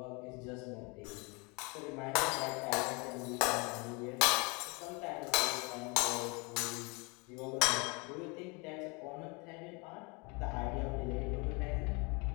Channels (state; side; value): quieter; right; 29.7 dB